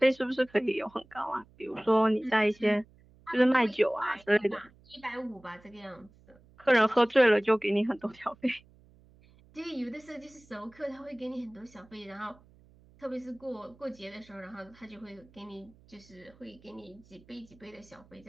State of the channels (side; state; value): right; noise; hum, 27 dB below the sound